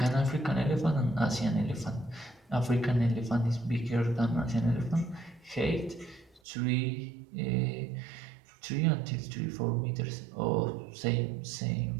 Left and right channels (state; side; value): drops out; left; at 6.4 s